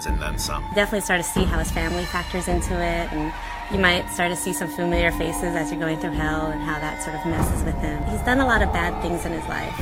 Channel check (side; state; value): both; identical; correlation 1.00